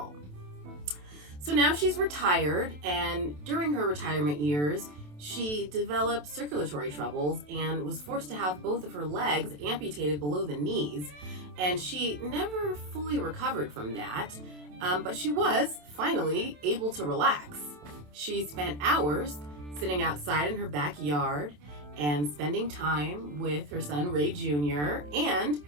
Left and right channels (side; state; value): left; late; 27 ms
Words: So now she's retired, and during her retirement years, she developed circulatory troubles and was forced to have both of her legs amputated below the knees, and she never fully recovered from that, but she was finally able to relax. She spent hours sitting outside in her backyard and spending time with her son Ray Jr. and